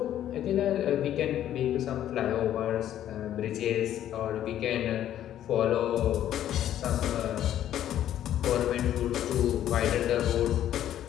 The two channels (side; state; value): right; quieter; 11.5 dB